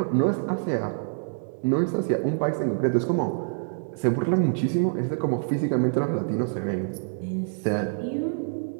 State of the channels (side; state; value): left; silent; digital silence